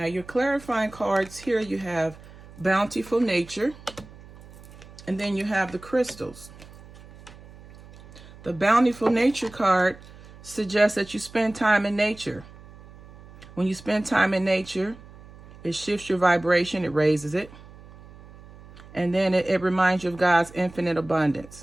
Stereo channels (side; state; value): right; noise; hum, 20 dB below the sound